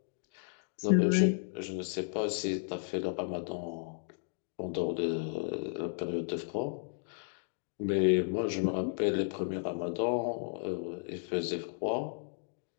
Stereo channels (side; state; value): right; silent; digital silence